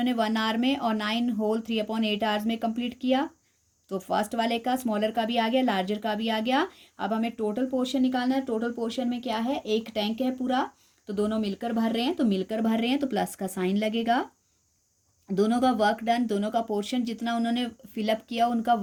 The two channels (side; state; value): both; identical; correlation 1.00